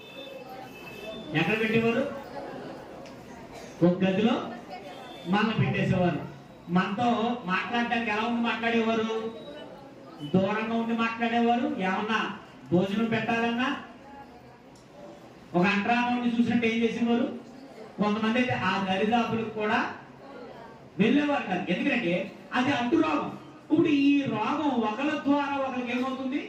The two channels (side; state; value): both; identical; correlation 1.00